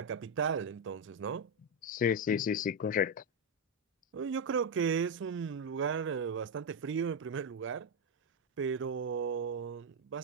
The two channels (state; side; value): normal; both; correlation 0.03